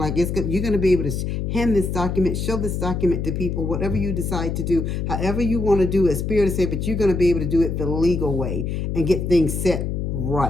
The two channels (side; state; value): left; noise; hum, 2 dB below the sound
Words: you're going to be able to hand this document, show this document to people, whatever you decide to do, however you want to do it. Spirit is saying, but you're going to be able to do it the legal way and get things set